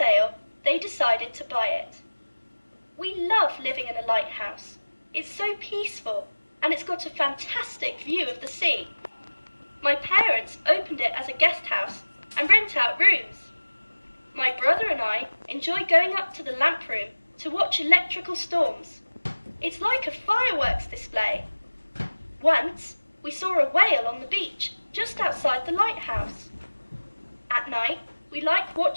they decided to buy it. We love living in a lighthouse. It's so peaceful, and it's got a fantastic view of the sea. My parents opened it as a guest house and rent out rooms. My brother and I enjoy going up to the lamp room to watch electrical storms. It's like a fireworks display. Once, we saw a whale on the beach just outside the lighthouse. At night, we like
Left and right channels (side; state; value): both; inverted; correlation -1.00